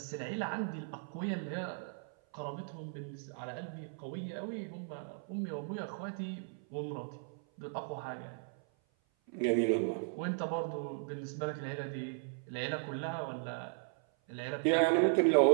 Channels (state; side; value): silent; left; 53 dB below the other